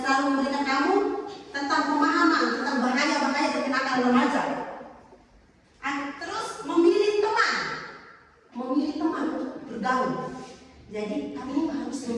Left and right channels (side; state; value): both; identical; correlation 1.00